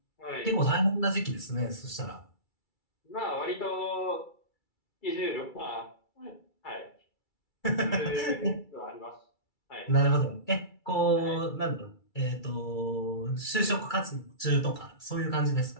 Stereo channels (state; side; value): late; right; 2.3 ms